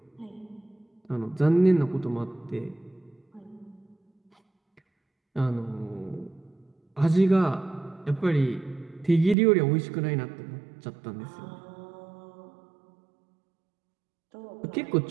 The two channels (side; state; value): left; drops out; at 9.3 s